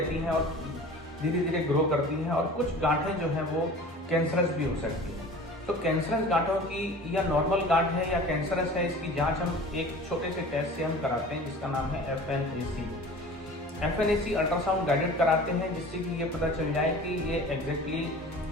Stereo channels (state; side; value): normal; both; correlation 0.41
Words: हैं और धीरे धीरे ग्रो करती हैं, और कुछ गांठें जो हैं वो कैंसरस भी हो सकती हैं। तो कैंसरस गांठों की या नॉर्मल गांठ है या कैंसरस है, इसकी जांच हम एक छोटे से टेस्ट से हम कराते हैं जिसका नाम है FNAC अल्ट्रासाउंड गाइडेड कराते हैं, जिससे कि ये पता चल जाए कि ये एग्जैक्टली